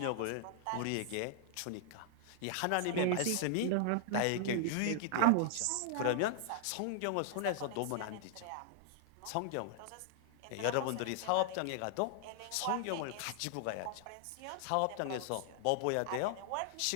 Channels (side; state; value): both; different; correlation -0.01